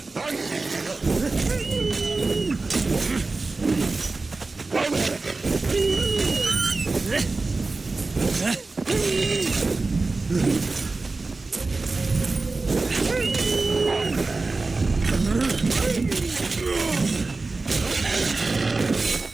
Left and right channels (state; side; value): quieter; left; 3.6 dB